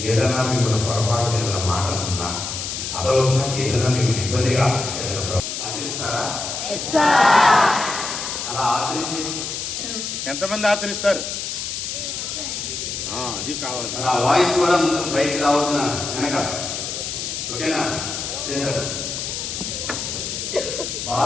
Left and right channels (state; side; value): noise; left; hiss, 5 dB below the sound